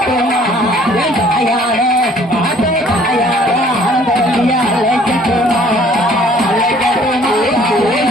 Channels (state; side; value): normal; both; correlation 0.57